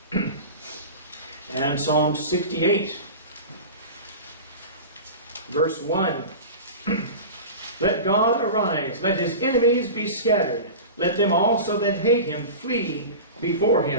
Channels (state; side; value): inverted; both; correlation -0.31